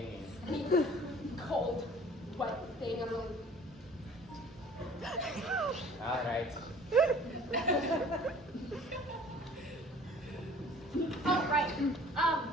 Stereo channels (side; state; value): both; normal; correlation 0.49